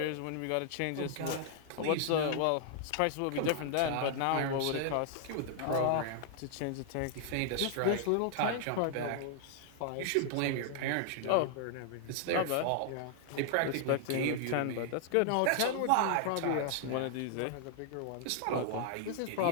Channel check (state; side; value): different; both; correlation -0.01